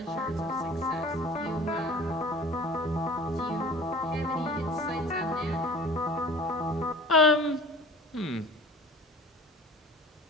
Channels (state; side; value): normal; both; correlation 0.45